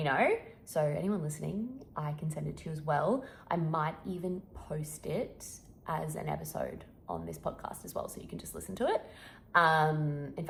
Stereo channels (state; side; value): identical; both; correlation 1.00